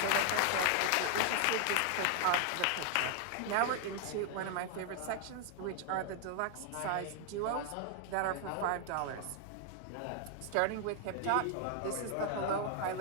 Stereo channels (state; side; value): different; both; correlation 0.00